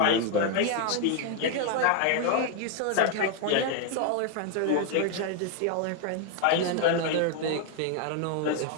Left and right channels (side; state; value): both; different; correlation 0.01